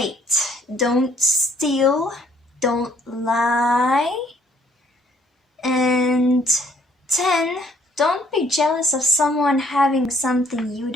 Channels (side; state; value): both; normal; correlation 0.63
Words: Don't steal, don't lie. And 10. Don't be jealous of someone having something you